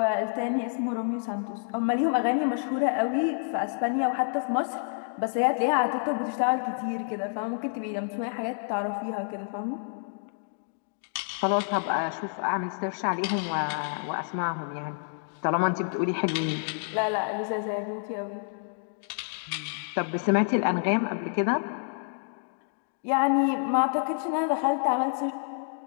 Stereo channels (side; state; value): right; silent; digital silence